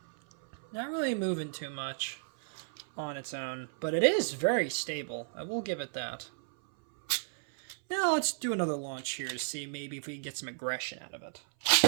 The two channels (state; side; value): silent; left; 55 dB below the other